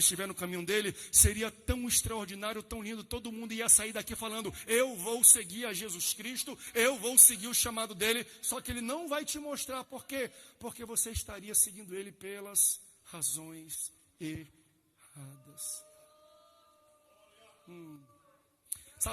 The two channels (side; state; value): both; identical; correlation 1.00